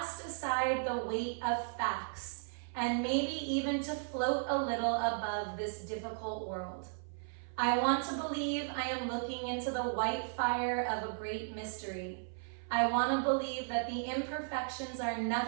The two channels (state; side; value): silent; left; 54 dB below the other